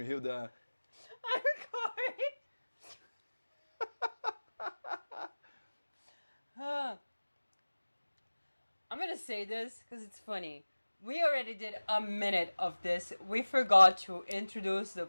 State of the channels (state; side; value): inverted; both; correlation -1.00